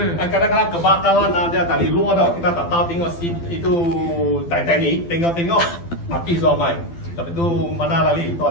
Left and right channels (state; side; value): late; right; 12 ms